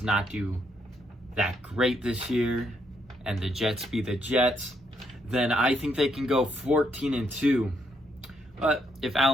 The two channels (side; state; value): both; normal; correlation 0.75